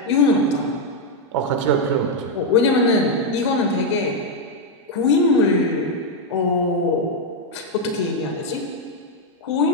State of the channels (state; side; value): normal; both; correlation 0.01